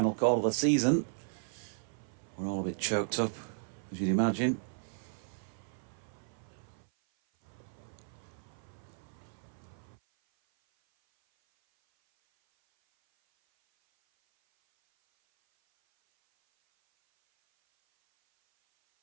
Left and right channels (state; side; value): silent; left; 54 dB below the other